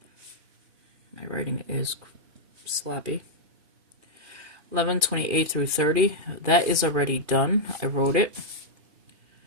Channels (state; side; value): late; left; 2.4 ms